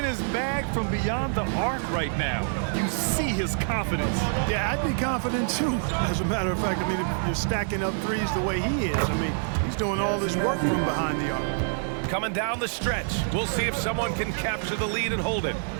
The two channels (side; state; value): left; silent; digital silence